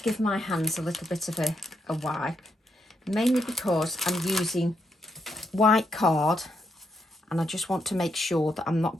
give my hands a little bit of a wipe, mainly because I'm using white card and I just want to make sure that I'm not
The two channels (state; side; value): normal; both; correlation 0.79